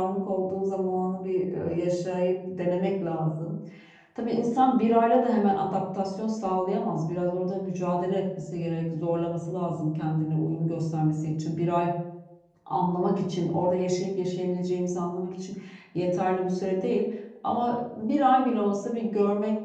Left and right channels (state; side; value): identical; both; correlation 1.00